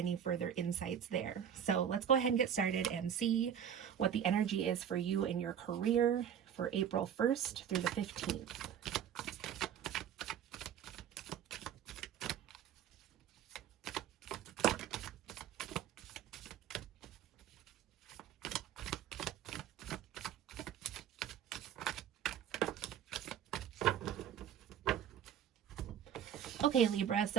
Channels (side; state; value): left; quieter; 9.1 dB